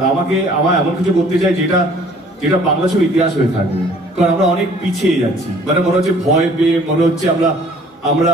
আমার এমন কিছু করতে চাই যেটা বাংলা ছবির ইতিহাস হয়ে থাকবে। কারণ আমরা অনেক পিছিয়ে যাচ্ছি, মানে মনে হচ্ছে ভয় পেয়ে, মনে হচ্ছে আমরা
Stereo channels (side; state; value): both; normal; correlation 0.55